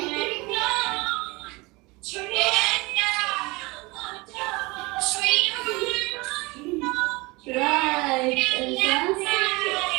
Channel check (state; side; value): quieter; left; 24.2 dB